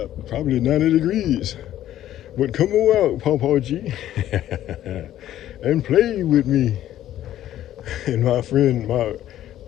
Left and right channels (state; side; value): quieter; right; 12.5 dB